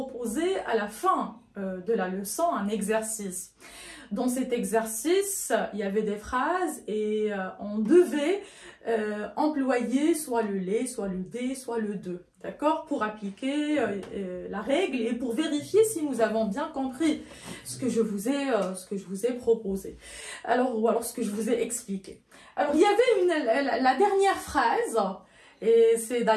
à la fin de la leçon un exercice. Dans cet exercice, il y avait des phrases et on devait employer soit le les, soit le des, soit le de, d'accord, pour appliquer la règle et pour vérifier si nous avons bien compris ce que je vous ai proposé. Alors, ou alors ce que je vous ai expliqué. Alors, il y avait la dernière phrase. Et c'est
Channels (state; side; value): identical; both; correlation 1.00